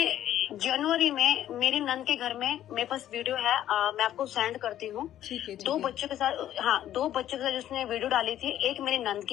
जनवरी में मेरी नंद के घर में मेरे पास वीडियो है, मैं आपको सेंड करती हूँ। 2 बच्चों के साथ, हाँ 2 बच्चों के साथ जिसने वीडियो डाली थी। एक मेरी नंद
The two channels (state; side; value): quieter; right; 11.9 dB